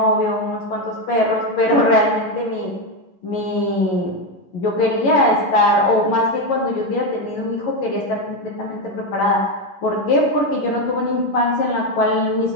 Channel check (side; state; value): right; late; 11 ms